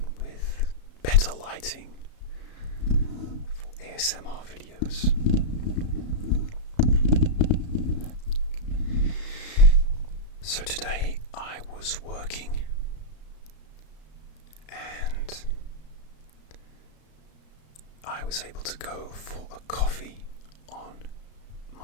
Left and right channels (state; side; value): late; right; 34 ms